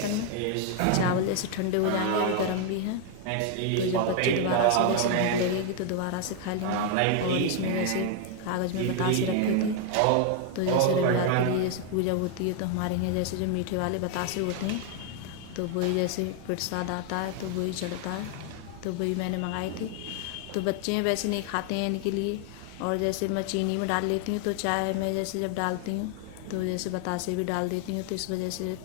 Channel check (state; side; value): different; both; correlation 0.00